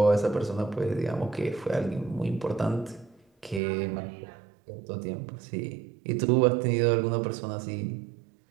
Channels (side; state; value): left; drops out; at 3.6 s